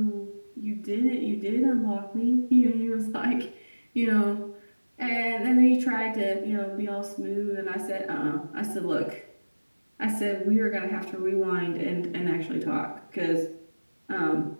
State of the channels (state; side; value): inverted; both; correlation -1.00